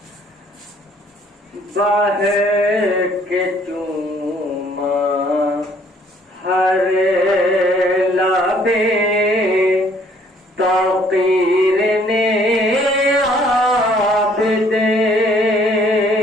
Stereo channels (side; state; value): both; normal; correlation 0.61